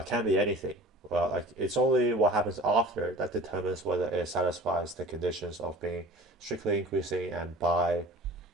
can be anything. Well, like it's only what happens after that determines whether it satisfies the conditions of being strictly increasing and by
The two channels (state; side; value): normal; both; correlation 0.42